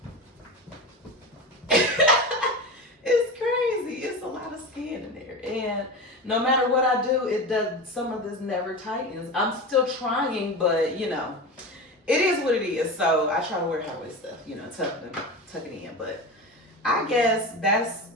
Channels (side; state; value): both; normal; correlation 0.26